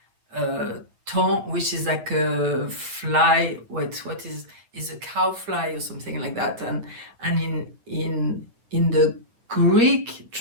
ton, which is like a fly. What is a cow fly or something like that. And in the Greek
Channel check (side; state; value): left; late; 8.8 ms